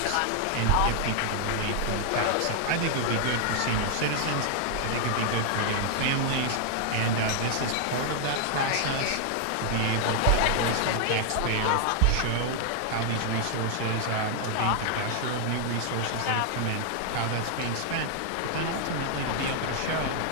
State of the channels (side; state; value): both; different; correlation 0.00